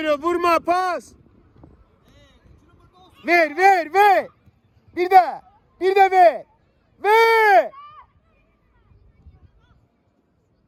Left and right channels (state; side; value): identical; both; correlation 1.00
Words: vurma pas. Ver, ver, ver. Bir de ver. Ver.